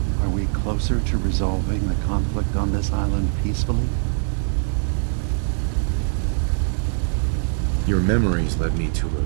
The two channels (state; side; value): silent; left; digital silence